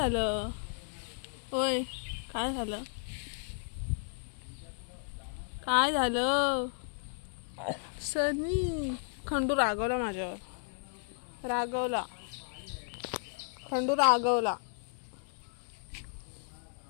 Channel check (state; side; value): silent; right; 55 dB below the other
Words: होय, काय झालं, काय झालं सनी? खंडू रागवला माझ्यावर, रागवला, खंडू रागवला,